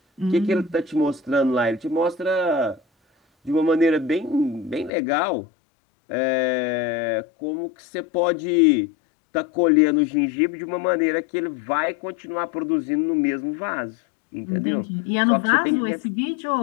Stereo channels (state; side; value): drops out; right; at 4.9 s